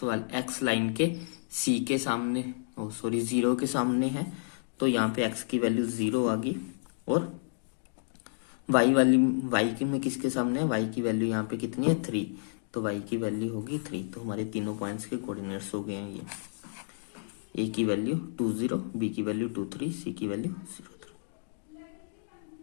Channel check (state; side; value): silent; right; digital silence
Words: एक्स लाइन के सी के सामने, 0 के सामने है। तो यहाँ पे एक्स की वैल्यू 0 आ गई। और वाई के में किसके सामने है, वाई की वैल्यू यहाँ पे कितनी है 3, तो वाई की वैल्यू होगी 3। तो हमारे तीनों पॉइंट्स के कोऑर्डिनेट्स हो गए हैं ये। ए की वैल्यू 2, 0, बी की वैल्यू 2, 3, सी की वैल्यू 0, 3।